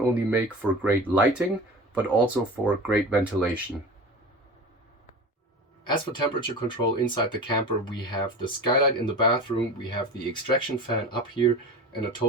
make for great lighting, but also for great ventilation. As for temperature control inside the camper, we have the skylight in the bathroom, we have the extraction fan up here, and a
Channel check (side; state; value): both; normal; correlation 0.33